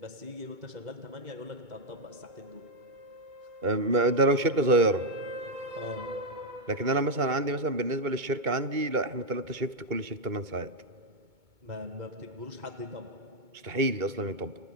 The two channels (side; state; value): left; late; 2.2 ms